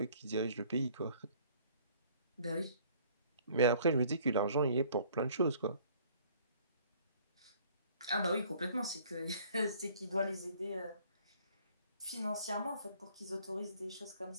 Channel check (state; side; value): inverted; both; correlation -0.57